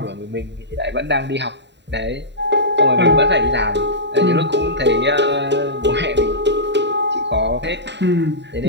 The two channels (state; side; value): late; left; 0.51 ms